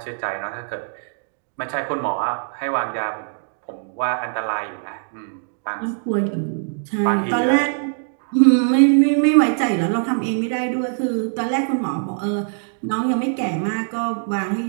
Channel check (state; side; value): silent; left; digital silence